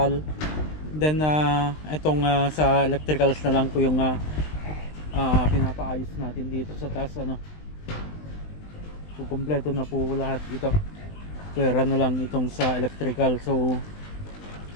Then itong sa electricals na lang po yung pinapaayos natin dito sa taas So kumpleto na po lahat ito. Pwera na lang itong sa electrical. So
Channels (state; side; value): late; right; 20 ms